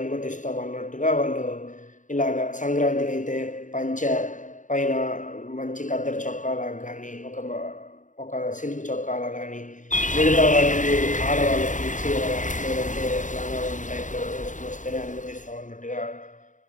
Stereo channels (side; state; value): right; late; 0.37 ms